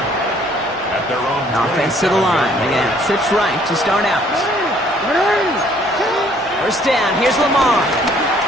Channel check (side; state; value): both; normal; correlation 0.61